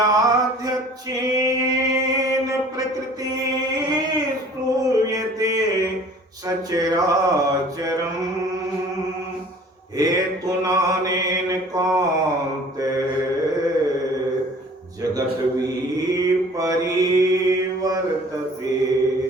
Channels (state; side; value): normal; both; correlation 0.49